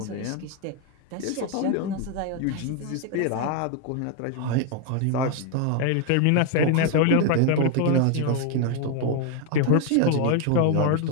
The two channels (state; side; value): different; both; correlation 0.01